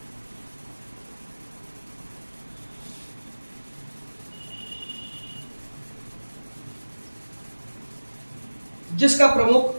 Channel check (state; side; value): inverted; both; correlation -1.00